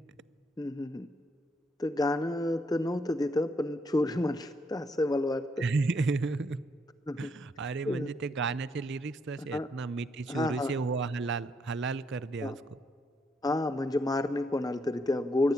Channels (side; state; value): both; normal; correlation 0.75